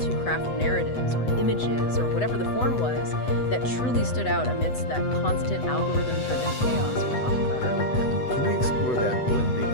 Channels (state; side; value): late; right; 8.0 ms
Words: to craft narratives or images or whatever the form was that truly stood out amidst that constant algorithm-driven chaos we talked about earlier. Can we explore that blending